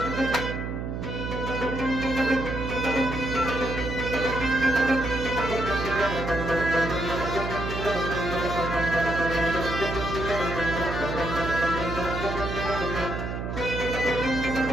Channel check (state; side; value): noise; right; hum, 4 dB below the sound